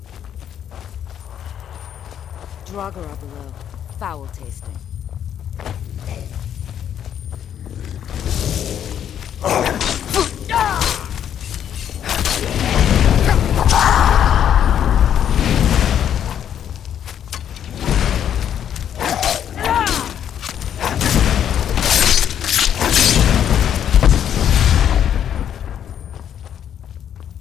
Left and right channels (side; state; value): right; quieter; 9.5 dB